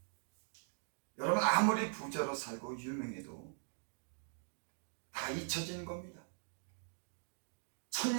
여러분, 아무리 부자로 살고 유명해도 다 잊혀지는 겁니다.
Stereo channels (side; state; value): left; silent; digital silence